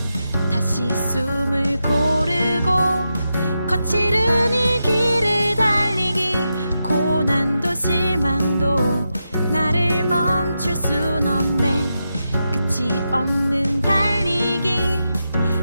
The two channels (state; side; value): inverted; both; correlation -0.87